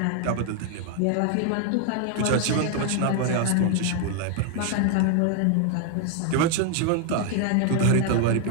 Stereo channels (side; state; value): both; different; correlation 0.00